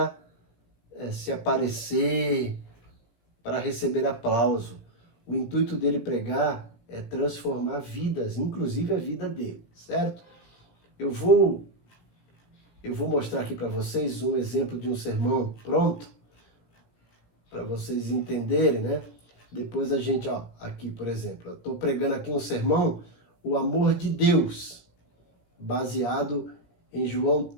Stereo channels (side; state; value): right; late; 17 ms